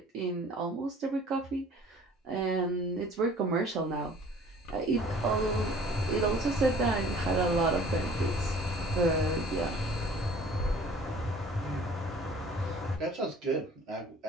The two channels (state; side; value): normal; both; correlation 0.51